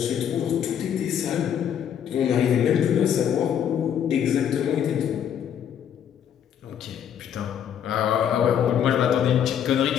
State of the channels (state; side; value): quieter; right; 9.0 dB